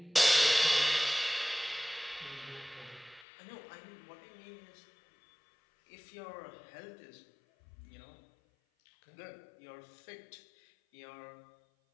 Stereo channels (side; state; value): right; drops out; at 3.2 s